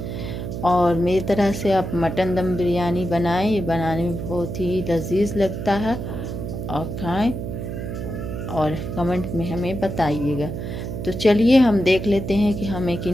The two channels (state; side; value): noise; right; hum, 5 dB below the sound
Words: और मेरी तरह से आप मटन दम बिरयानी बनाएं, ये बनाने में बहुत ही लजीज लगता है। और खाएं और कमेंट में हमें बताइएगा। तो चलिए हम देख लेते हैं कि हमें